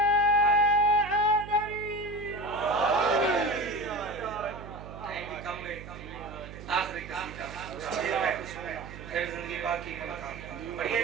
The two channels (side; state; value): right; noise; hum, 13 dB below the sound